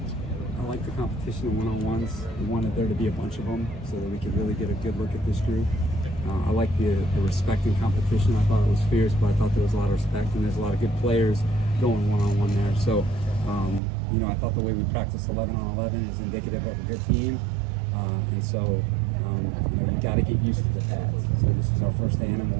I like the competition in one-on-ones. We wanted there to be a bunch of them so that we could really get a good look at this group. I like the respect and competition. I thought it was fierce, but I thought there was a lot of respect, and there's a lot of good players going one-on-one there. So, I thought the way we practice 11-on-11 is indicative of a good team. And so, you got to get used to the pads. So this is our first day in them.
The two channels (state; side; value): drops out; left; at 13.8 s